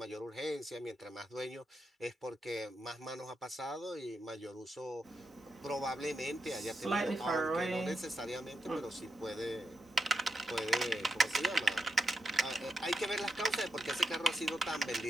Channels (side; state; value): both; normal; correlation 0.86